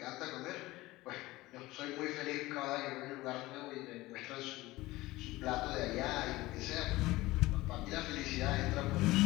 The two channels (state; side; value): quieter; right; 19.0 dB